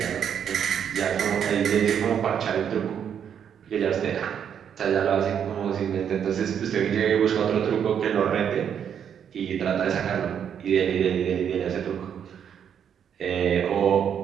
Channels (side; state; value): left; quieter; 8.4 dB